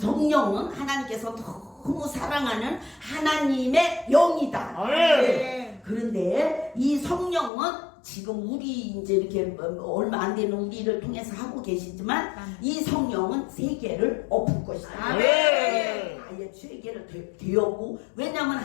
하나님께서 너무 사랑하는 하나님의 영이다. 아멘. 그런데 이 성령은 지금 우리 이제 이렇게 얼마 안 되는 우리를 통해서 하고 계시지만 이 성령은 세계를 엎을 것이다. 아멘. 아예 세계를 되었고 왜냐하면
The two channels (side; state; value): right; drops out; at 7.5 s